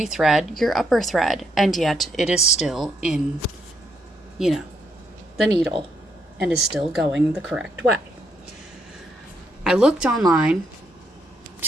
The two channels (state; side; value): normal; both; correlation 0.76